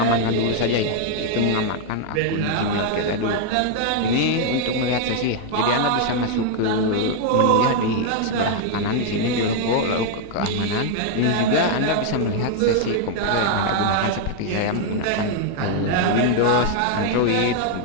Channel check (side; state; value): both; different; correlation 0.00